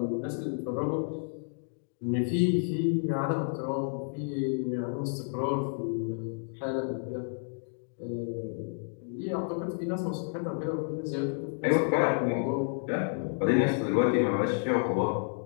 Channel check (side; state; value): right; silent; digital silence